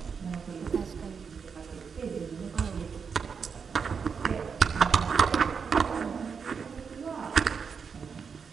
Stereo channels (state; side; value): quieter; left; 6.0 dB